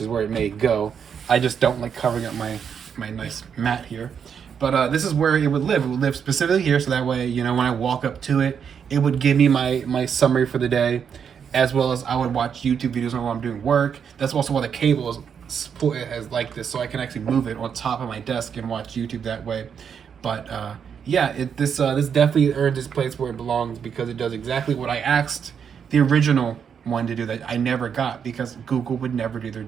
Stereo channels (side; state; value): left; quieter; 7.3 dB